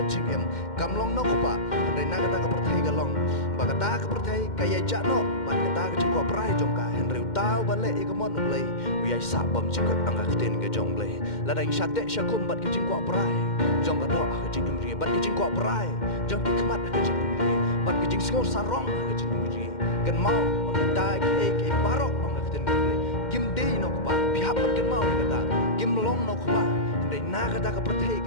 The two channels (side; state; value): right; late; 2.1 ms